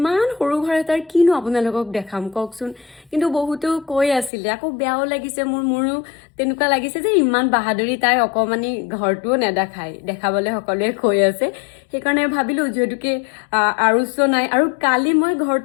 সৰু ঘৰ এটাৰ কিনো আপোনালোকক দেখাম কওকচোন। কিন্তু বহুতো কৈ আছিলে, আকৌ বেয়াও লাগিছে মোৰো তেনেকুৱা লাগিছে যে ইমান বাহাদুৰি তাই অকণমানি ঘৰটোও নেদেখায়, দেখাবলৈ সকলোৱে কৈ আছে। সেইকাৰণে ভাবিলোঁ যিহেতুকে আৰুচো নাই, আৰু কালি মই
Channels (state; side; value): drops out; right; at 4.3 s